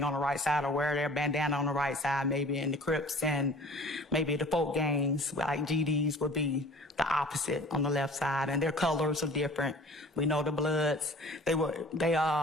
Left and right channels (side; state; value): both; normal; correlation 0.46